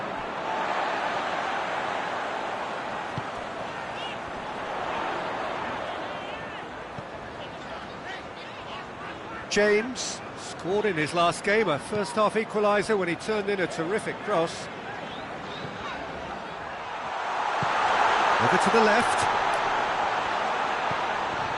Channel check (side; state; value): both; identical; correlation 1.00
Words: James scored in his last game, a first-half equaliser when he turned in a terrific cross. Over to the left.